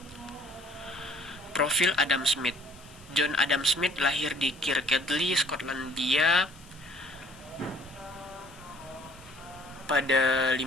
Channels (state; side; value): noise; left; hiss, 24 dB below the sound